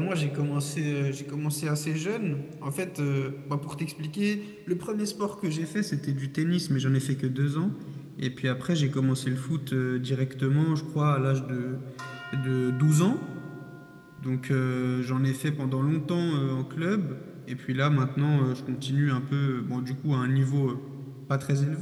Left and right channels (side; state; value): both; identical; correlation 1.00